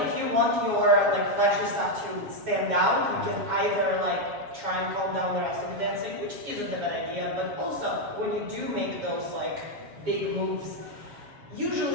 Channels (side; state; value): left; late; 7.2 ms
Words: if you want your like flashy stuff to stand out, you can either like try and calm down the rest of the dancing, which isn't a bad idea, but also when you do make those like big moves,